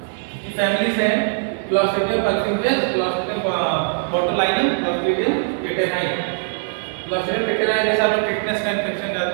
की फैमिलीज हैं। Clostridium perfringens, Clostridium botulinum, Clostridium tetani. Clostridium tetani जैसे आप लोग टिटनेस का इन्फेक्शन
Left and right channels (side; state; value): left; silent; digital silence